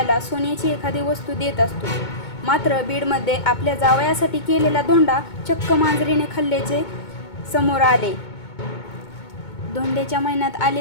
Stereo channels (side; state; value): right; late; 2.2 ms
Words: सोन्याची एखादी वस्तू देत असतो। मात्र बीडमध्ये आपल्या जावयासाठी केलेला धोंडा चक्क मांजरीने खाल्ल्याचे समोर आले। धोंड्याच्या महिन्यात